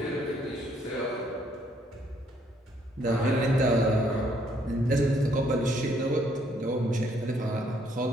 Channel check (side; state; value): both; normal; correlation 0.68